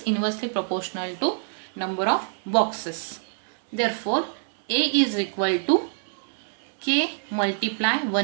inversely proportional to number of boxes. Therefore A is equal to K multiply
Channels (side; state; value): left; silent; digital silence